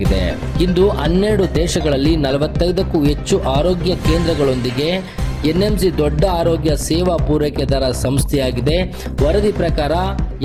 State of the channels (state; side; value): identical; both; correlation 1.00